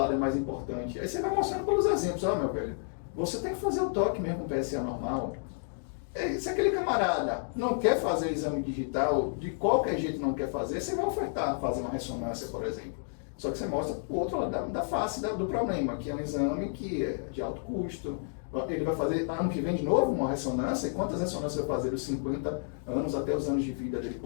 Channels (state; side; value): silent; right; digital silence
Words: é mais importante? Aí você vai mostrando pelos exemplos, ó, meu velho, você tem que fazer o toque mesmo com PSA normal. Se aquele camarada não quer fazer exame digital, de qualquer jeito não quer fazer, você vai ofertar fazer uma ressonância, por exemplo. Só que você mostra o outro lado da face do problema, que é um exame que é de alto custo. Ele vai fazer ano que vem de novo uma ressonância, e quantas ressonâncias vai fazer dos 50 anos até os anos de vida dele